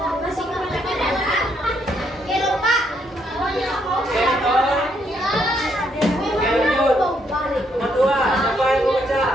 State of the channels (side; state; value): both; normal; correlation 0.73